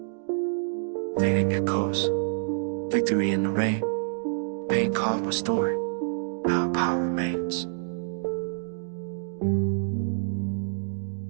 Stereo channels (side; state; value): left; silent; digital silence